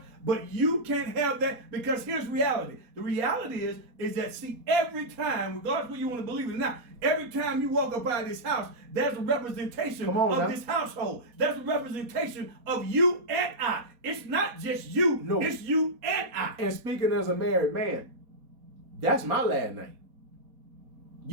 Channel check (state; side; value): late; left; 4.2 ms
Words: But you can't have that because here's reality. The reality is that, see, every time, regardless of whether you want to believe it or not, every time you walk up out of this house, there's a representation of this household. That's a representation of you and I. It's not just you. No. It's you and I. And speaking as a married man, that's my last name.